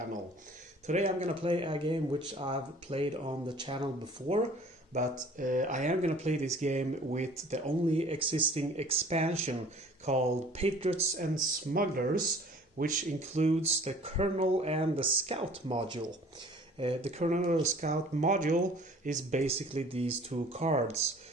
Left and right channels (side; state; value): both; normal; correlation 0.50